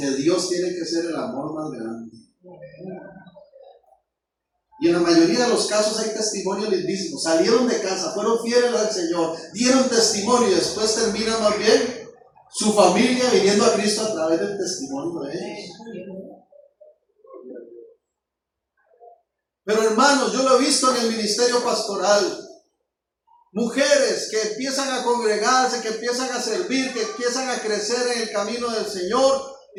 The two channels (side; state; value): both; identical; correlation 1.00